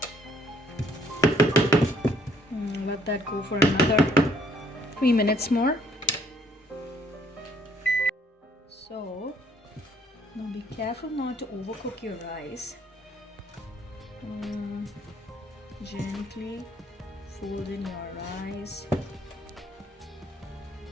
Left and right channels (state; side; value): normal; both; correlation 0.65